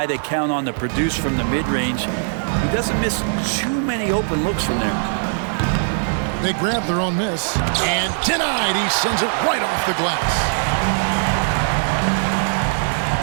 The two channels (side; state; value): left; silent; digital silence